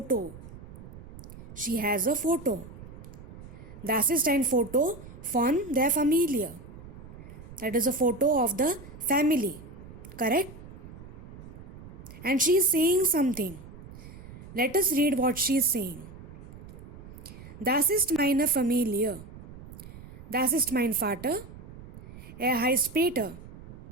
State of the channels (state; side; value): noise; right; rumble, 15 dB below the sound